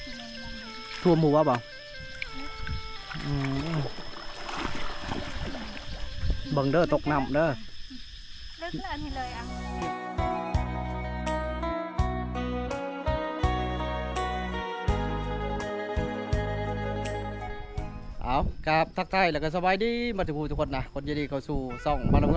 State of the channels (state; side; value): identical; both; correlation 1.00